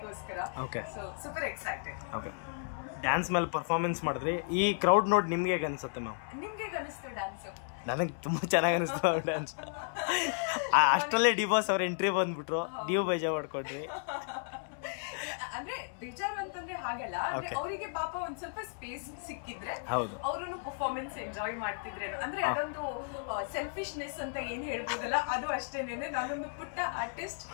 So super excited. ಡ್ಯಾನ್ಸ್ ಮೇಲೆ ಪರ್ಫಾರ್ಮೆನ್ಸ್ ಮಾಡಿದ್ರಿ, ಈ ಕ್ರೌಡ್ ನೋಡಿ ನಿಮ್ಗೆ ಹೇಗೆ ಅನ್ಸುತ್ತೆ ಮ್ಯಾಮ್? ನಿಮ್ಗೆ ಹೇಗೆ ಅನಿಸ್ತು ಡ್ಯಾನ್ಸ್? ನನಗೆ ತುಂಬಾ ಚೆನ್ನಾಗಿ ಅನಿಸ್ತು ಡ್ಯಾನ್ಸ್. ಅಷ್ಟರಲ್ಲೇ ಡಿ ಬಾಸ್ ಅವ್ರ ಎಂಟ್ರಿ ಬಂದ್ಬಿಟ್ರು, ನೀವು ಬೇಜಾರು ಮಾಡ್ಕೊಂಡ್ರಿ. ಅಂದ್ರೆ ಬೇಜಾರು ಅಂತಂದ್ರೆ ಹಾಗಲ್ಲ, ಅಂದ್ರೆ ಅವರಿಗೆ ಪಾಪ ಒಂದ್ ಸ್ವಲ್ಪ ಸ್ಪೇಸ್ ಸಿಕ್ಕಿದ್ರೆ ಅವರನ್ನು ಪರ್ಫಾರ್ಮೆನ್ಸ್ ಎಂಜಾಯ್ ಮಾಡ್ತಿದ್ರೇನು, ಅಂದ್ರೆ ಅದೊಂದು ಸೆಲ್ಫಿಶ್ನೆಸ್ ಅಂತ ಏನ್ ಹೇಳ್ಬೋದಲ್ಲ, ಅದು ಅಷ್ಟೇನೇನೆ. ನಾನೊಂದು ಪುಟ್ಟ ಆರ್ಟಿಸ್ಟ್,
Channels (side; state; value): right; silent; 55 dB below the other